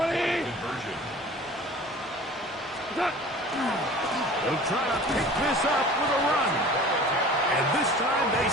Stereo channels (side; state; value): both; normal; correlation 0.43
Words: conversion. They'll try to pick this up with a run. And this time they